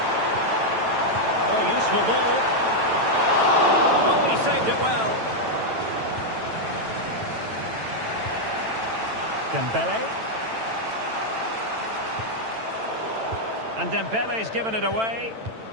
Oh, useful ball. Oh, he saved it well. Dembele. And Dembele's given it away.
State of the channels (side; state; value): left; late; 9.0 ms